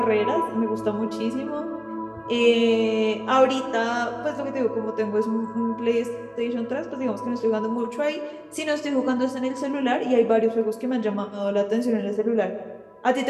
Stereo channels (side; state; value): both; identical; correlation 1.00